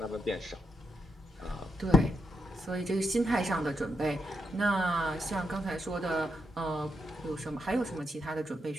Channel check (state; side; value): normal; both; correlation 0.82